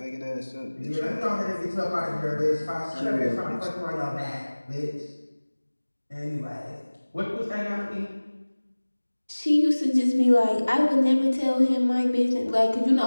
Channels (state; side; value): inverted; both; correlation -1.00